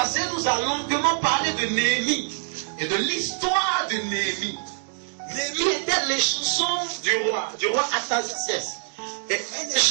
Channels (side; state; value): left; silent; digital silence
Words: nous a longuement parlé de Néhémie et de l'histoire de Néhémie. Néhémie était les chansons du roi Artaxerxès. Et une des